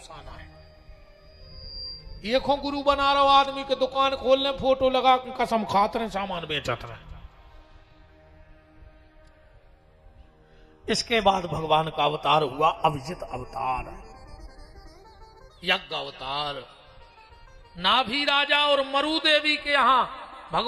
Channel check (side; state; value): both; identical; correlation 1.00